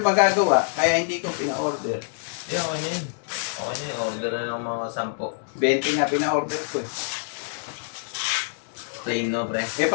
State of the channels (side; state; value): right; silent; 60 dB below the other